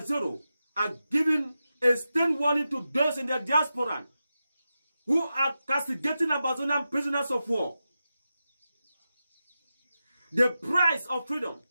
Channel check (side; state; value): both; inverted; correlation -0.91